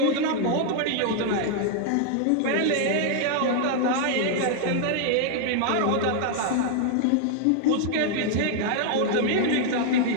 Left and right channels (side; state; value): both; different; correlation 0.00